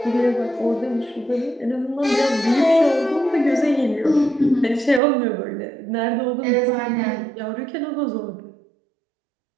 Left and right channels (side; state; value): left; drops out; at 5.0 s